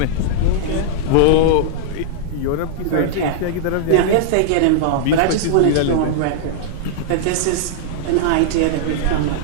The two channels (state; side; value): different; both; correlation -0.01